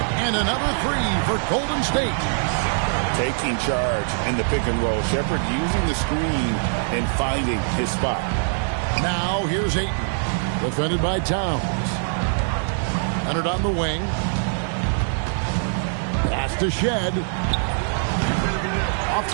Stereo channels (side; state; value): left; silent; digital silence